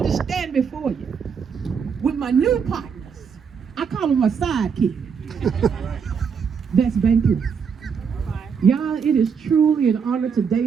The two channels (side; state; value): left; quieter; 6.4 dB